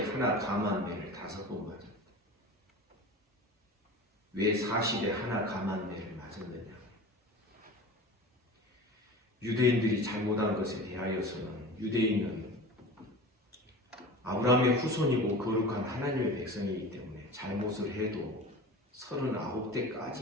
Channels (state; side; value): normal; both; correlation 0.35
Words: 하나 감한 매를 5번 맞았다. 왜 40에 하나 감한 매를 맞았느냐? 유대인들이 잘못한 것에 대하여서는 유대인은 아브라함의 후손이고 거룩한 하나님의 백성이기 때문에 잘못을 해도